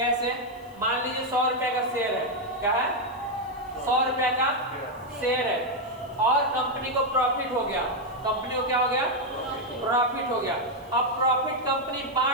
मान लीजिए 100 रुपए का शेयर है, क्या है? 100 रुपए का शेयर है, और कंपनी को प्रॉफिट हो गया, कंपनी को क्या हो गया? प्रॉफिट हो गया। अब प्रॉफिट कंपनी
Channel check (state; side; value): noise; left; hiss, 28 dB below the sound